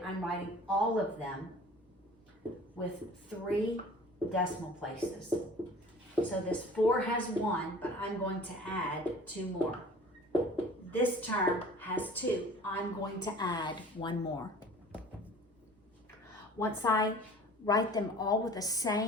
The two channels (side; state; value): both; normal; correlation 0.46